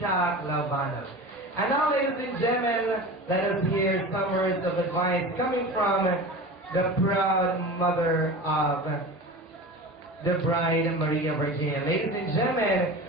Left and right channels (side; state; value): both; normal; correlation 0.33